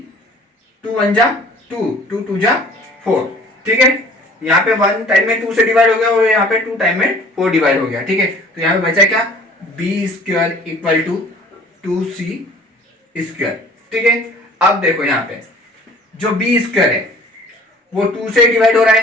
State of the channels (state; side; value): normal; both; correlation 0.50